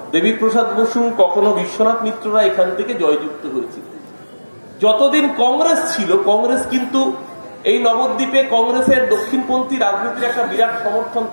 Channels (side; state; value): both; inverted; correlation -1.00